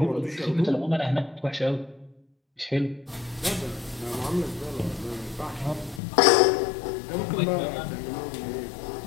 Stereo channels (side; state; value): right; drops out; at 6.0 s